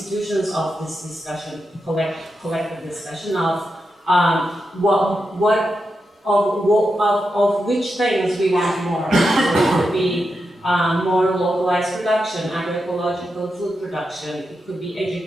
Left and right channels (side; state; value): both; normal; correlation 0.87